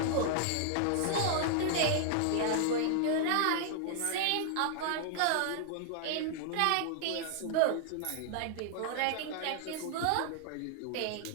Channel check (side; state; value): both; different; correlation -0.01